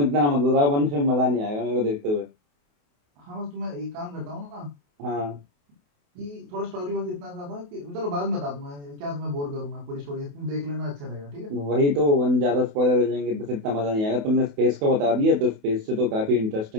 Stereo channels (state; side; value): late; left; 28 ms